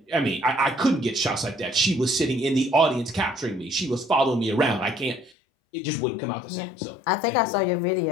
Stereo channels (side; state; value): right; drops out; at 5.3 s